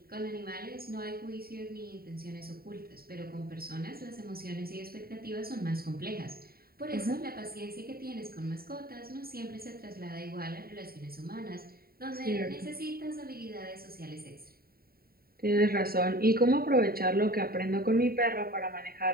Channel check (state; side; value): late; left; 0.44 ms